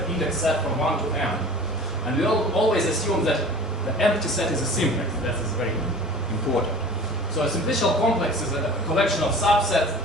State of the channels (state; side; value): normal; both; correlation 0.41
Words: index set from 1 to m. And we always assume that the empty set is a simplex. That is very important. So a simplicial complex is a collection of